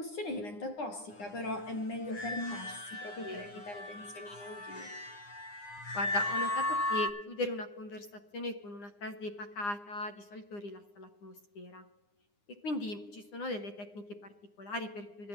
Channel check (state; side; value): late; right; 9.8 ms